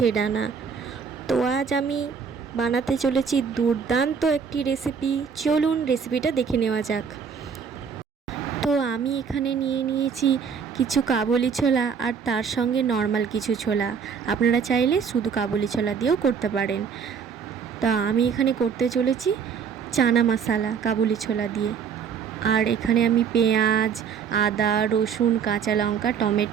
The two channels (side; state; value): left; quieter; 6.6 dB